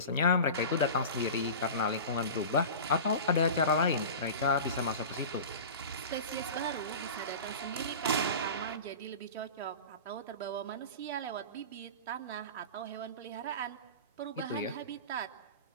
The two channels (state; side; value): inverted; both; correlation -0.32